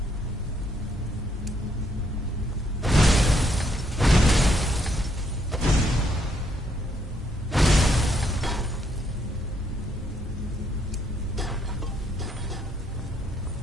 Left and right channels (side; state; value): both; normal; correlation 0.72